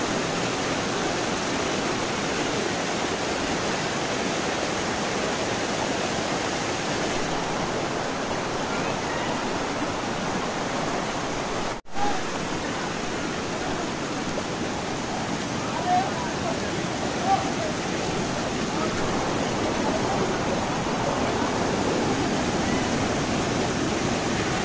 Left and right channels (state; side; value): identical; both; correlation 1.00